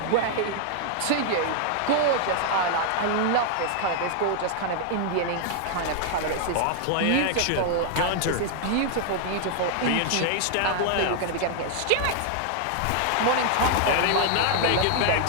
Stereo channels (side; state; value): both; different; correlation 0.00